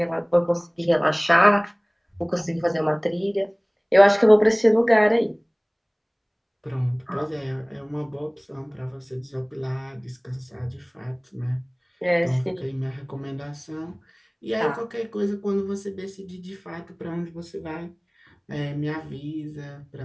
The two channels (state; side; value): identical; both; correlation 1.00